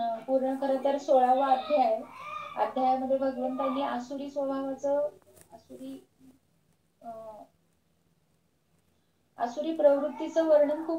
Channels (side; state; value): both; identical; correlation 1.00